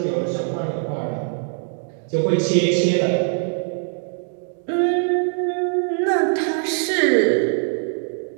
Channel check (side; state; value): left; silent; digital silence